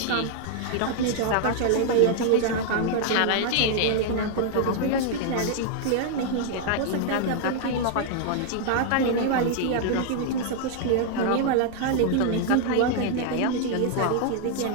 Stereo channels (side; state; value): both; different; correlation 0.00